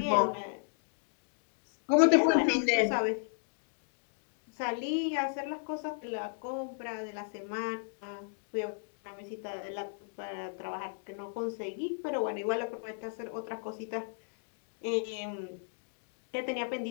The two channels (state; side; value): silent; right; digital silence